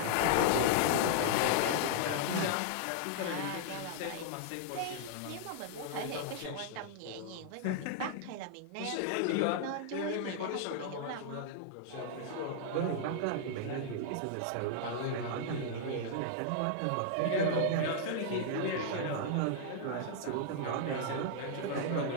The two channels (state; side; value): different; both; correlation -0.01